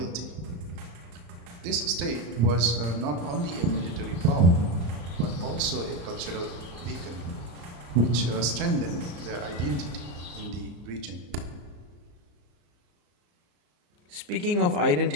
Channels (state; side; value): late; left; 34 ms